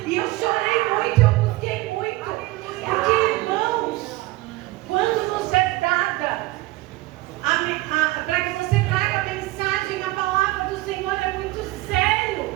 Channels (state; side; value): quieter; left; 19.3 dB